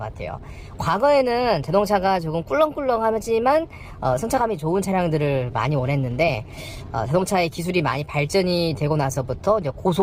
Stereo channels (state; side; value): identical; both; correlation 1.00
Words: 과거에는 자동차가 조금 꿀렁꿀렁하지만 승차감이 좋은 차량들을 많이 원했는데, 자동차의 기술이 많이 발전이 되고 나서부터 이제